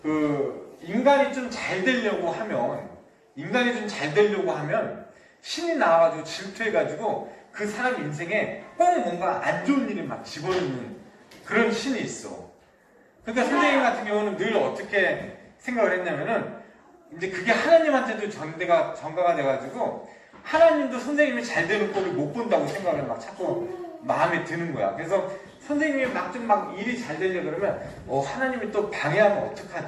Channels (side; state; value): both; identical; correlation 1.00